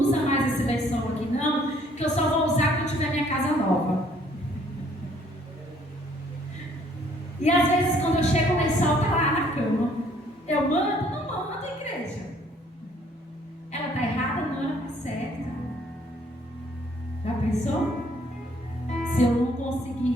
mais esse lençol aqui, não, que eu só vou usar quando tiver minha casa nova. E às vezes, quando eu chego, o lençol está lá na cama. Eu mando? Não mando, igreja. Ela está errada? Não, ela está certa. Já pensou? Se eu não consigo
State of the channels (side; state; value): both; normal; correlation 0.62